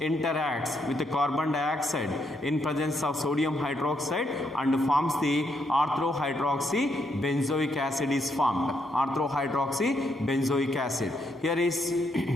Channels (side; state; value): both; normal; correlation 0.76